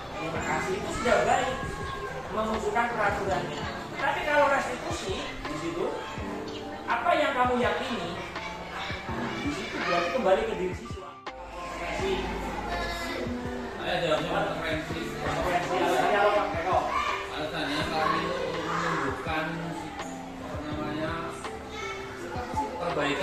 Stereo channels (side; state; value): both; identical; correlation 1.00